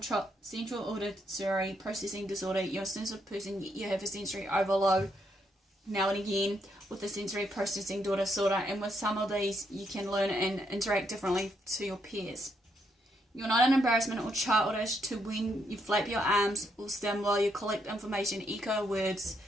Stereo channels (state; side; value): normal; both; correlation 0.76